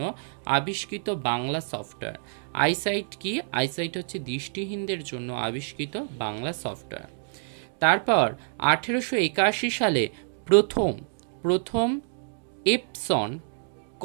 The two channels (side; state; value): left; silent; digital silence